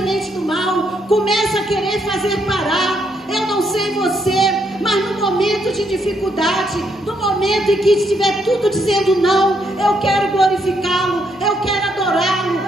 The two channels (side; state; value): both; normal; correlation 0.75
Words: do mal, começa a querer fazer parar. Eu não sei você, mas no momento de dificuldade, no momento em que estiver tudo dizendo não, eu quero glorificá-lo, eu quero adorá-lo,